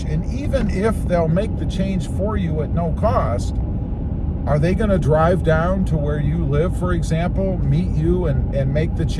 and even if they'll make the change for you at no cost, are they going to drive down to where you live, for example, meet you and make the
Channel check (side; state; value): both; identical; correlation 1.00